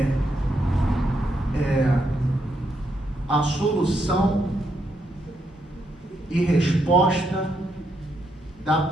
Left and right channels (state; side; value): normal; both; correlation 0.78